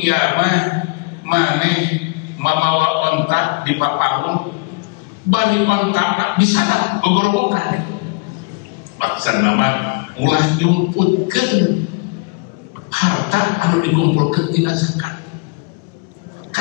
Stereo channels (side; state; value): right; quieter; 28.7 dB